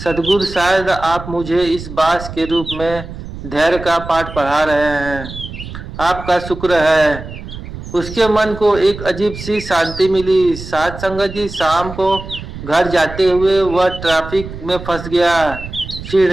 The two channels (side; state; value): right; noise; rumble, 11 dB below the sound